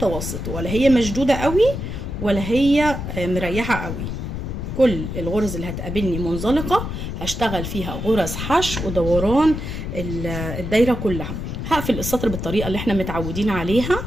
ولا هي مشدوده قوي ولا هي مريحه قوي. كل الغرز اللي هتقابلني منزلقه هشتغل فيها غرز حشو ودوران الدايره كلها. هقفل السطر بالطريقه اللي احنا متعودين عليها.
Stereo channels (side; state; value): left; noise; rumble, 5 dB below the sound